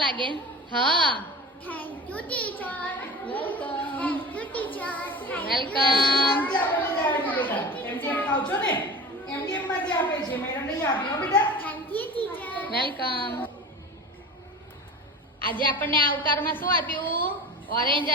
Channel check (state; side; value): normal; both; correlation 0.33